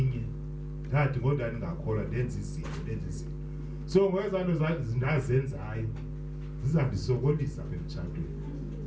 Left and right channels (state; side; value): identical; both; correlation 1.00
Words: inye ndathi ngoda ndingakholwa ndenza izinto so ngokwezanto zindazenzayo zizandisokolisa emtshatweni